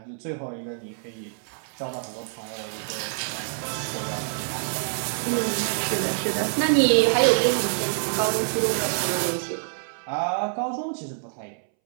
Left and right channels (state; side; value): silent; left; 61 dB below the other